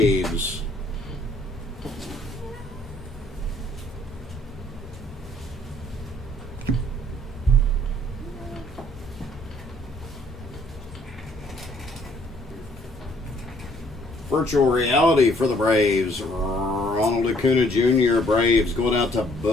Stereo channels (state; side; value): normal; both; correlation 0.63